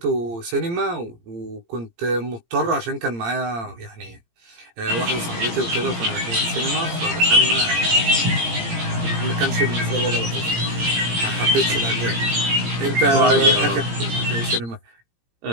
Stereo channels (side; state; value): left; late; 17 ms